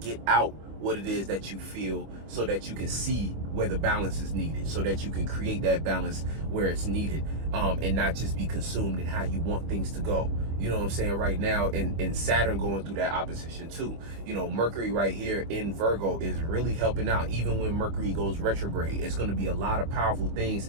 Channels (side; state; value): left; late; 25 ms